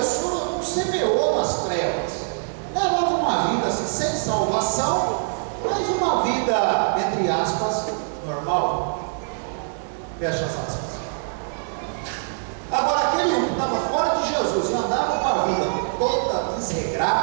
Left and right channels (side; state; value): left; silent; 63 dB below the other